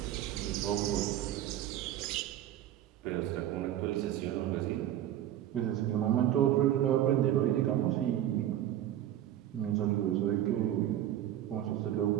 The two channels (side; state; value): left; quieter; 12.1 dB